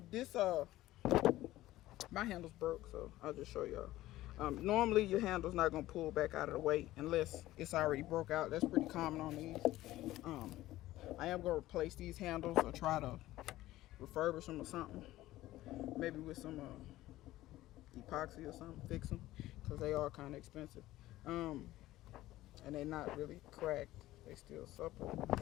this my handle's broke, so I'll just show y'all. Normally your handle's not gonna pull back out of the way unless it's already broke out. That's pretty common on these. I am gonna replace these handles or try to refurbish them or something. Maybe with some epoxy or something, fix them, because they are kind of expensive. And they're not really cracked. They still supple.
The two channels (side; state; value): right; quieter; 15.9 dB